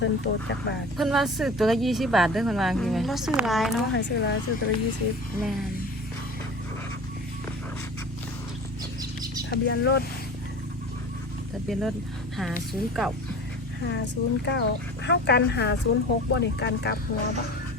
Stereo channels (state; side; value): normal; both; correlation 0.38